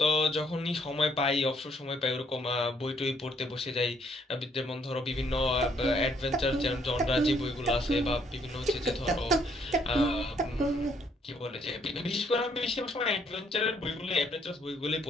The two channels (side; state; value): both; normal; correlation 0.68